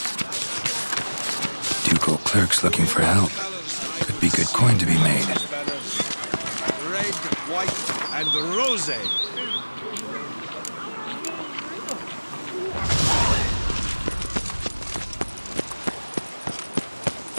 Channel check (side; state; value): both; inverted; correlation -1.00